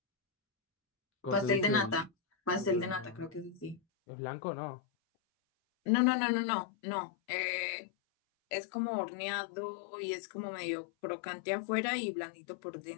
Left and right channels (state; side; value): drops out; right; at 3.8 s